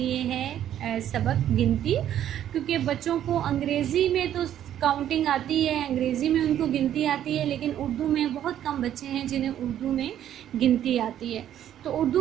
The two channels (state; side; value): quieter; left; 11.0 dB